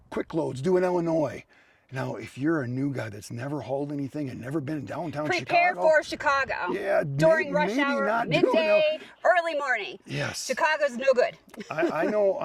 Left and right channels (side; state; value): both; identical; correlation 1.00